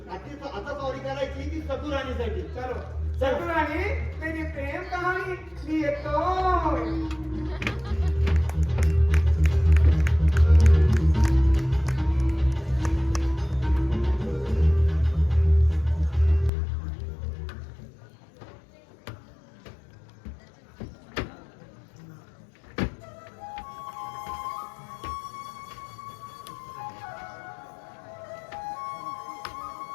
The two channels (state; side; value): drops out; right; at 16.5 s